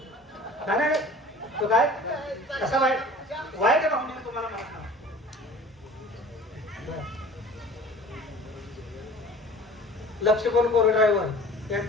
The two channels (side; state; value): both; normal; correlation 0.44